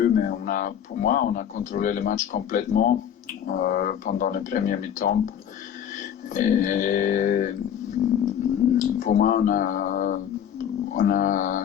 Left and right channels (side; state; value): right; quieter; 9.3 dB